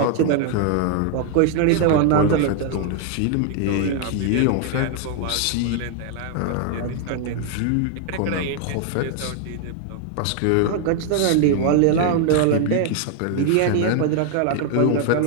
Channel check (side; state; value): both; different; correlation 0.00